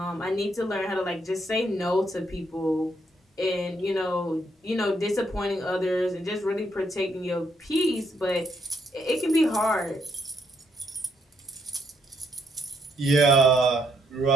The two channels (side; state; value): both; normal; correlation 0.74